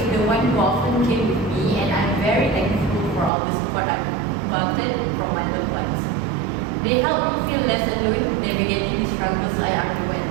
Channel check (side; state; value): left; drops out; at 3.3 s